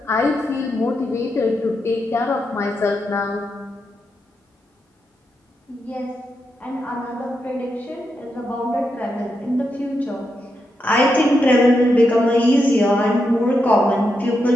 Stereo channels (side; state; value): both; normal; correlation 0.84